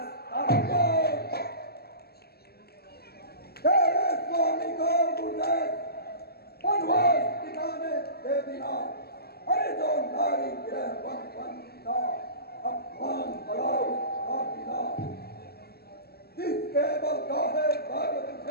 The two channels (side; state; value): right; late; 0.46 ms